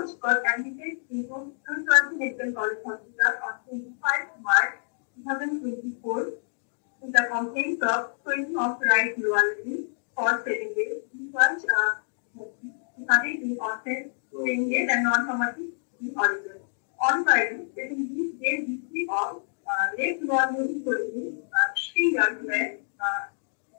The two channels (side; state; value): right; silent; digital silence